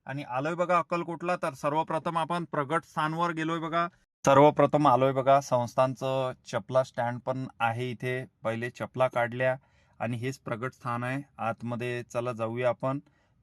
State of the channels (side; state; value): both; identical; correlation 1.00